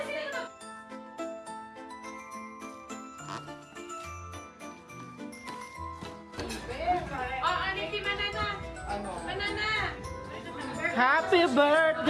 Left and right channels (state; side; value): identical; both; correlation 1.00